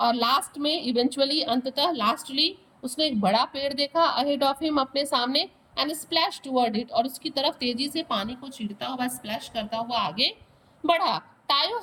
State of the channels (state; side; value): identical; both; correlation 1.00